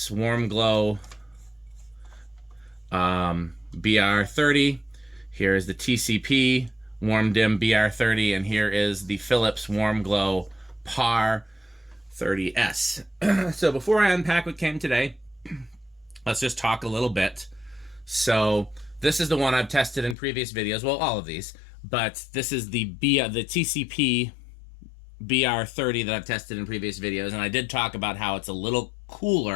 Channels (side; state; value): right; drops out; at 20.2 s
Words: Warm Glow BR30. Here is the TCP Warm Dim BR30, and here is the Philips Warm Glow PAR 30S. So before I unpack what came today, let's just talk a little bit. So this is the one I've tested in previous videos. Well, all of these, but this is the TCP BR30 that I've tested in previous videos, and I did talk about how it's a little